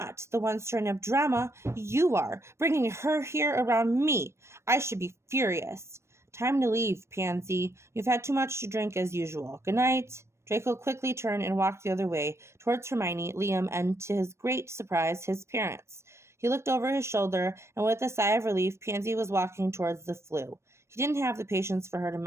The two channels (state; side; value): late; left; 0.13 ms